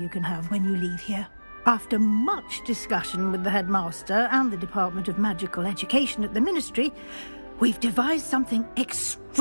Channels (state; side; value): inverted; both; correlation -1.00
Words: can have when you leave here. After much discussion with the headmaster and the Department of Magical Education at the Ministry, we've devised something